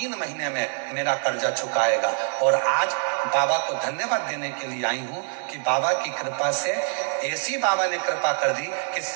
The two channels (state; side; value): silent; left; digital silence